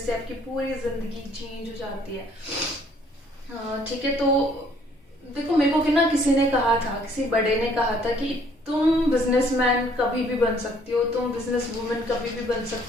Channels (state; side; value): normal; both; correlation 0.62